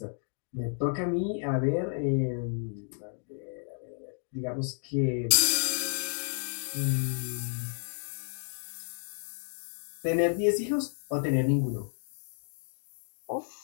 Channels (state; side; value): silent; right; digital silence